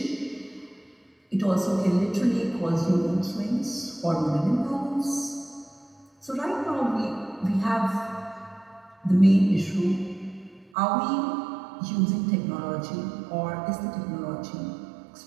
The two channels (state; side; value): drops out; left; at 10.7 s